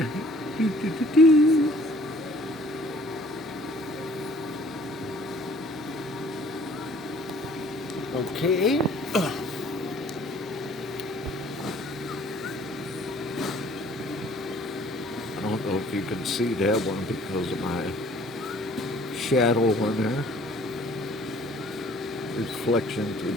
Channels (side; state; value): both; normal; correlation 0.55